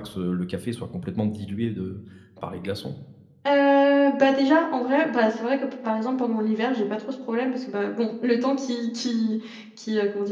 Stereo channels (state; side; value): identical; both; correlation 1.00